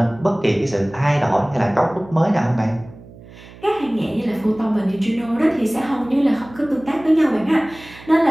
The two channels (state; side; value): noise; right; hum, 20 dB below the sound